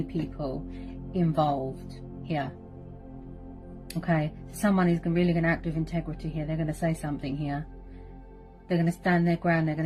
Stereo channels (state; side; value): identical; both; correlation 1.00